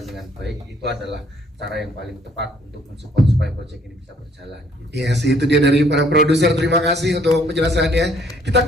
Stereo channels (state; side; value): normal; both; correlation 0.63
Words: dengan baik, itu adalah cara yang paling tepat untuk mensupport supaya proyek ini bisa berjalan gitu. Yes, itu dia dari para produser. Terima kasih untuk penjelasannya. Kita